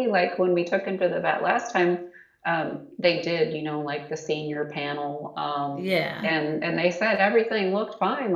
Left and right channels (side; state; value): both; identical; correlation 1.00